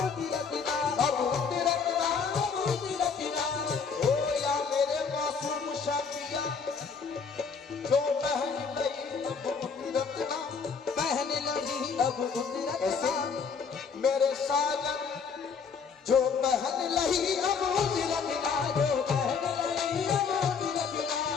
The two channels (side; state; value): right; quieter; 5.8 dB